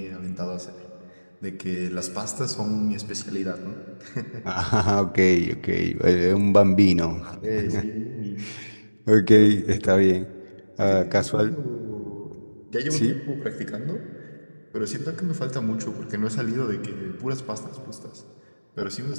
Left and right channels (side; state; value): both; inverted; correlation -1.00